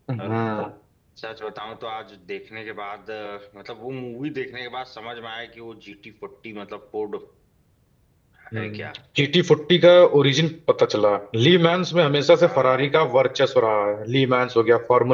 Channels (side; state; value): both; identical; correlation 1.00